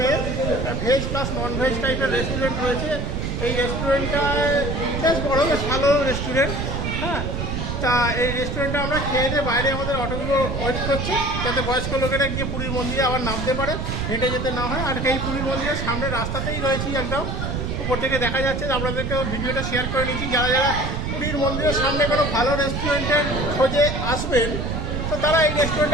ভেজ প্লাস নন ভেজ টাইপের রেস্টুরেন্ট রয়েছে। এই রেস্টুরেন্টটা বেশ বড়, বেশ ভালো রেস্টুরেন্ট। হ্যাঁ, তা এই রেস্টুরেন্টে আমরা খেয়ে দিয়ে বাইরে আমাদের অটোগুলো ওয়েট করছে, যাতে বয়স্ক লোকেরা গিয়ে পুরীর মন্দিরে আবার নামতে পারে, হেঁটে যেতে না হয়। আর এই পুরীর মন্দিরের সামনে রাস্তাতেই রয়েছি একদম, উপর থেকে দেখা যাচ্ছে। আপনাদেরকেও ভিডিওটা শেয়ার করে নিচ্ছি। যারা যারা পুরীর মন্দিরের সামনে কোনো ভালো রেস্টুরেন্টের খোঁজে আসবেন, তো তারা এই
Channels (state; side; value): noise; right; rumble, 2 dB below the sound